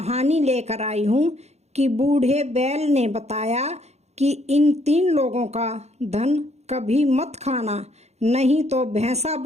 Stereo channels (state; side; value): late; left; 0.31 ms